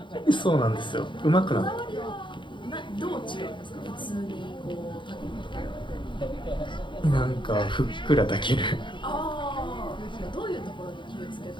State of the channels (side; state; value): right; late; 0.23 ms